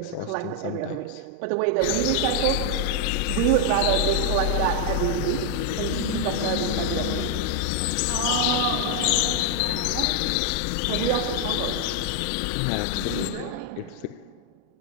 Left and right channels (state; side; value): different; both; correlation 0.00